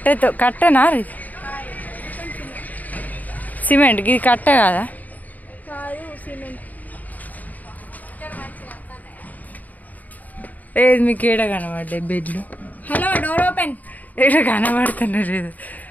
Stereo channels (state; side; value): late; right; 0.078 ms